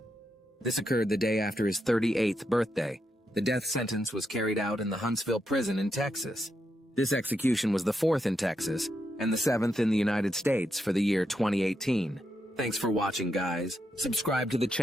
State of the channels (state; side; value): normal; both; correlation 0.83